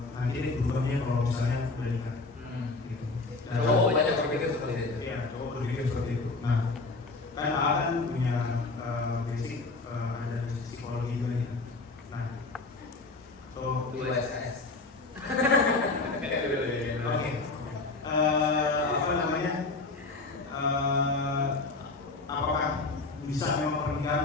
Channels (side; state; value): right; quieter; 3.6 dB